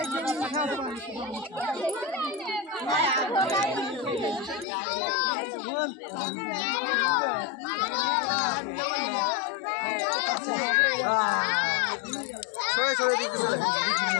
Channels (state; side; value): drops out; right; at 4.7 s